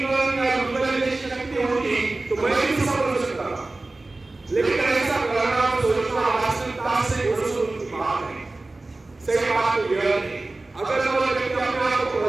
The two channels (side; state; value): left; quieter; 3.1 dB